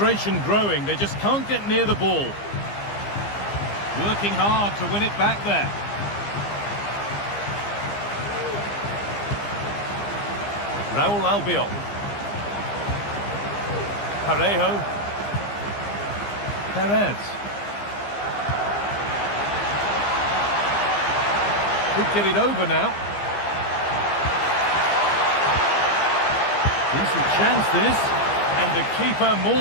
growing. They just can't get near the ball. Working hard to win it back there. Raul Albiol. Parejo. Perez. Could get it over now. Decent chance this. And the keeper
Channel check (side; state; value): right; late; 15 ms